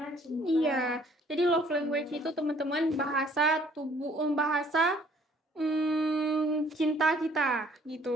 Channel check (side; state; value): both; normal; correlation 0.59